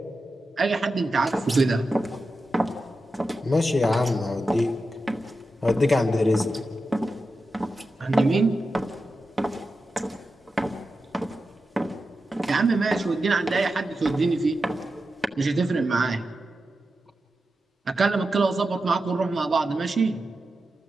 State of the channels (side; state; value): both; normal; correlation 0.90